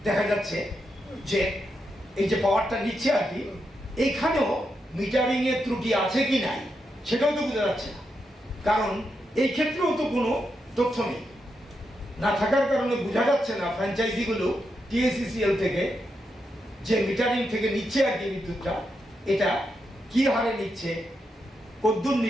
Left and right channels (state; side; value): normal; both; correlation 0.84